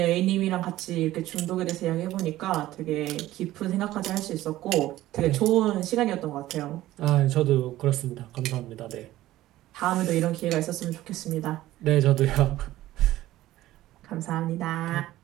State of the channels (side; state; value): left; quieter; 15.4 dB